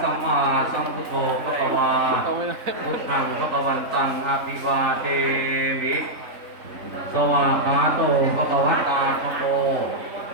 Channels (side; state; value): left; late; 3.6 ms